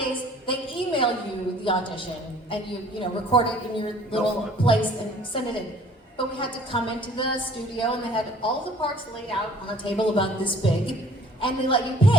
they email you the audition, and you record it in your little place and send it in. But we had to come into the studio, and they had all the parts laid out on a table about this big, and they let you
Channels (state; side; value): normal; both; correlation 0.54